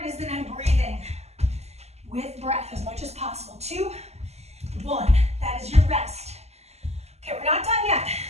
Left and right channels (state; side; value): late; left; 0.31 ms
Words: is that I'm breathing with breath as much as possible. 2, 1, that is your rest. Okay, we're not done yet.